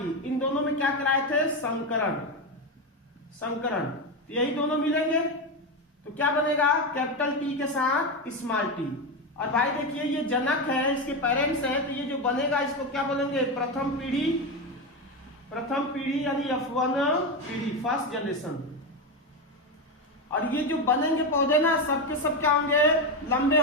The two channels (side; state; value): both; normal; correlation 0.13